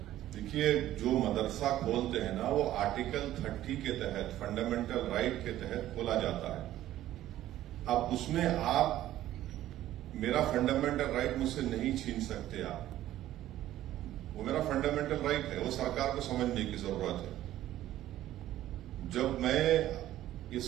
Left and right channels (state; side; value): quieter; left; 13.6 dB